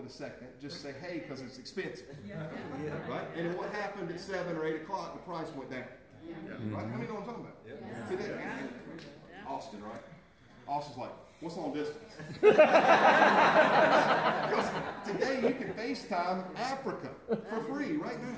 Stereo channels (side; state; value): both; identical; correlation 1.00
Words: a second, just say hey, because it's expensive. Right? And what happened at 7 or 8 o'clock, the price went down. Right? How many know what I'm talking about? Today, Austin, right? Austin's like, what's long distance? Because today you can FaceTime Africa for free right